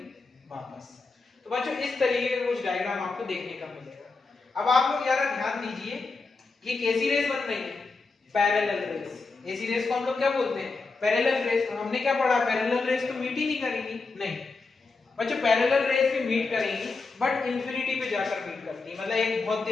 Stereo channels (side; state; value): right; quieter; 4.0 dB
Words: वापस। तो बच्चों इस तरीके का कुछ डायग्राम आपको देखने का मिलेगा। अब आप लोग जरा ध्यान दीजिए, ये कैसी रेस बन रही है, पैरेलल रेस। ऐसी रेस को हम लोग क्या बोलते हैं, पैरेलल रेस। हमने क्या पढ़ा, पैरेलल रेस तो मीट ही नहीं करेंगी, नहीं बच्चों, पैरेलल रेस भी मीट करेंगी बट इंफिनिटी पे जाकर मीट करती है। मतलब एक बहुत